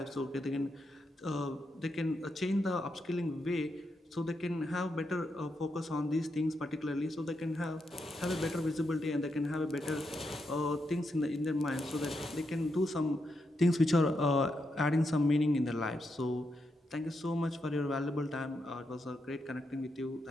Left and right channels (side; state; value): both; normal; correlation 0.83